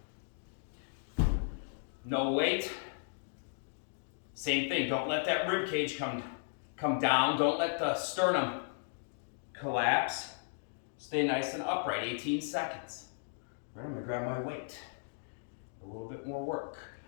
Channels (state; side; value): silent; right; digital silence